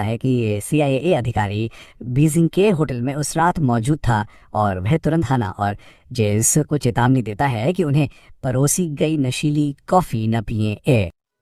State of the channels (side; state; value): both; identical; correlation 1.00